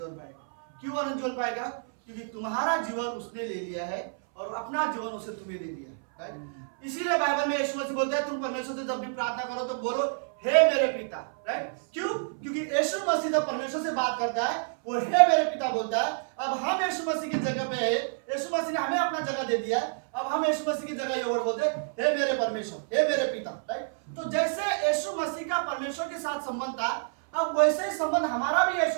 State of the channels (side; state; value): left; silent; 59 dB below the other